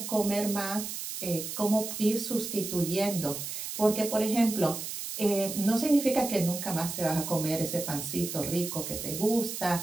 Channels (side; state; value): right; noise; hiss, 6 dB below the sound